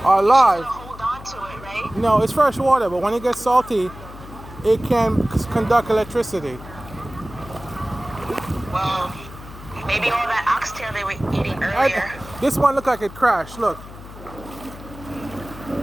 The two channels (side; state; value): left; noise; hum, 16 dB below the sound